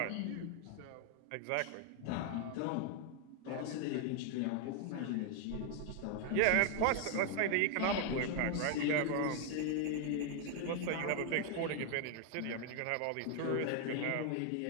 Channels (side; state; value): both; different; correlation 0.00